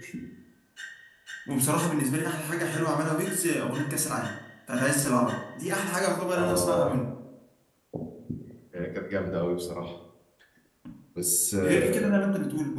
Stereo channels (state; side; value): identical; both; correlation 1.00